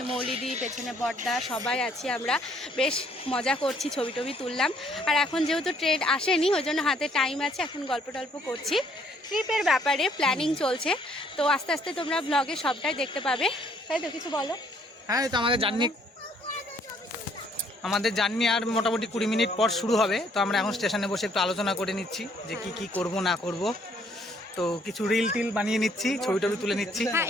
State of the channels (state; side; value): normal; both; correlation 0.65